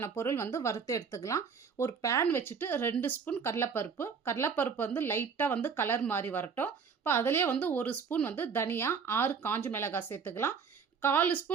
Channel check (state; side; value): quieter; left; 5.9 dB